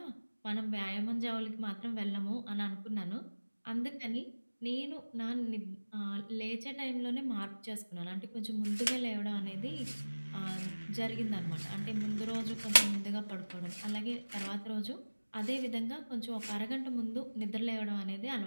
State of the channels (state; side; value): inverted; both; correlation -1.00